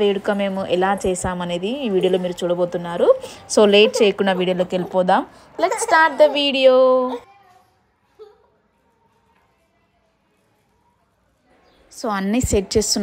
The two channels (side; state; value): both; identical; correlation 1.00